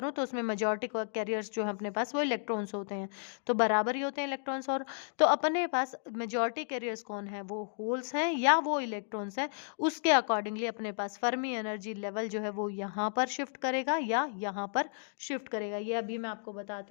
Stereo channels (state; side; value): silent; right; digital silence